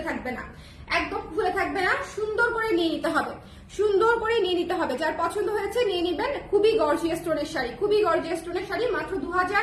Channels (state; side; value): identical; both; correlation 1.00